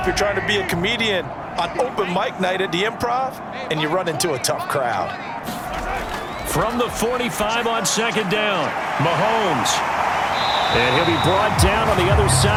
you're trying to be a comedian on open mic night at the Improv and you run into a tough crowd. From the 45 on 2nd down, Mahomes. And he'll be brought down on the other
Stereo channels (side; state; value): both; identical; correlation 1.00